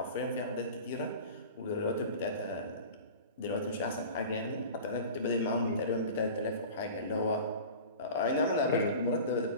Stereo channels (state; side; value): inverted; both; correlation -0.37